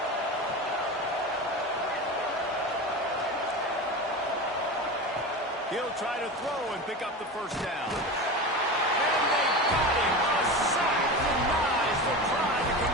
He'll try to throw and pick up the 1st down. And they got him. A sack denies the try to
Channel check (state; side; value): normal; both; correlation 0.27